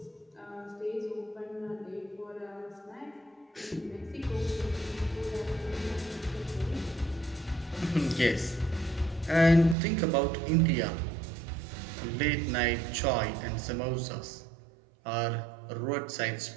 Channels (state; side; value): drops out; left; at 9.8 s